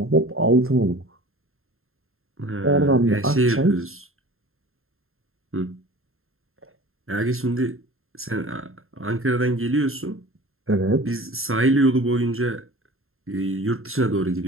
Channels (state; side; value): late; left; 0.61 ms